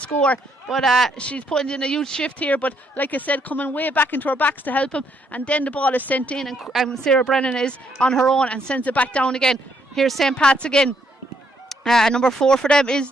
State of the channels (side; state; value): both; normal; correlation 0.73